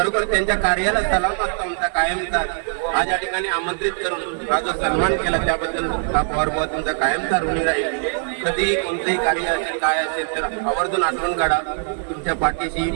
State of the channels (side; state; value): left; silent; 65 dB below the other